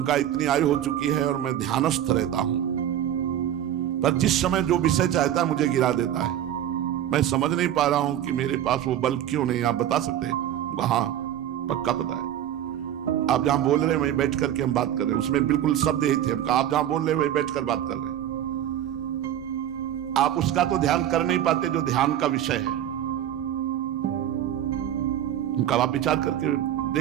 इतनी आयु हो चुकी है और मैं ध्यानस्थ रहता हूं, पर जिस समय जो विषय चाहता है मुझे गिरा देता है। मैं समझ नहीं पा रहा हूं कि मेरे पास वो बल क्यों नहीं, आप बता सकते हैं? हाँ पक्का पता है। आप जहां बोल रहे हैं वहीं बैठ करके हम बात कर रहे हैं, उसमें बिल्कुल शब्द यही थे। हम आप जहां बोल रहे हैं वहीं बैठ कर बात कर रहे हैं। आप उसका तो ध्यान कर नहीं पाते जो ध्यान का विषय है। उनका आप विचार करके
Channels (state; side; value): quieter; left; 11.1 dB